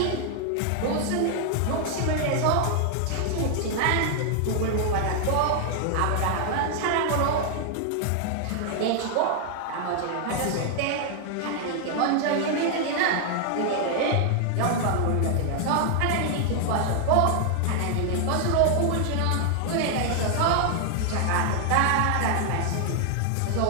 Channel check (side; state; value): both; different; correlation 0.00